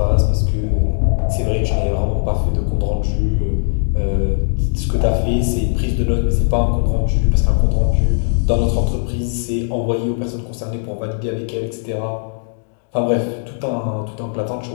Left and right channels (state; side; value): silent; right; digital silence